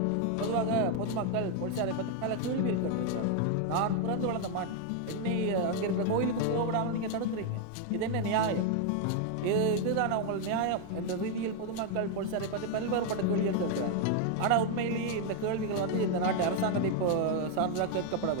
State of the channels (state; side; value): different; both; correlation 0.01